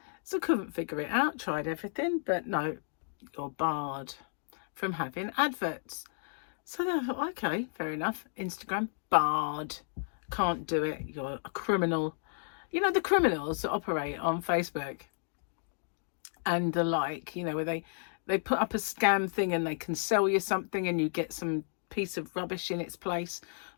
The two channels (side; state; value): right; silent; digital silence